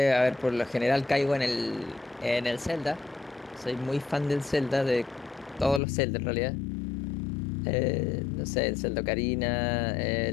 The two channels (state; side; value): drops out; right; at 5.8 s